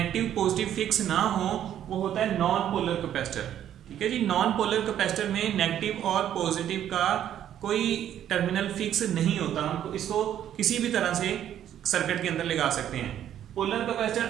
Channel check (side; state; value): left; quieter; 10.7 dB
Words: पॉजिटिव फिक्स ना हो वो होता है नॉन पोलर कैपेसिटर। ठीक है जी। नॉन पोलर कैपेसिटर में नेगेटिव और पॉजिटिव का कोई टर्मिनल फिक्स नहीं होता, हम इसको किसी भी तरह से सर्किट के अंदर लगा सकते हैं। पोलर कैपेसिटर